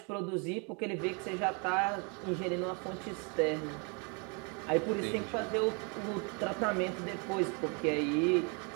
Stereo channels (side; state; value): left; quieter; 34.4 dB